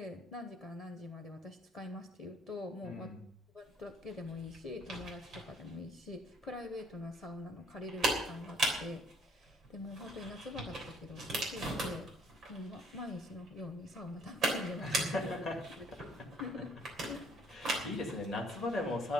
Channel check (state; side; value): normal; both; correlation 0.62